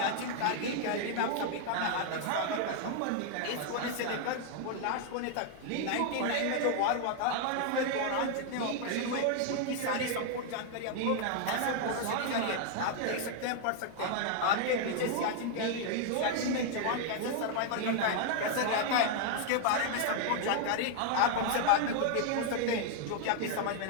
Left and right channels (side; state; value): both; different; correlation 0.00